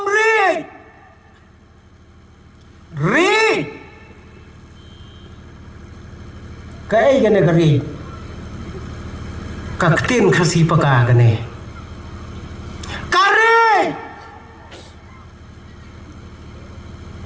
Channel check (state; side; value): identical; both; correlation 1.00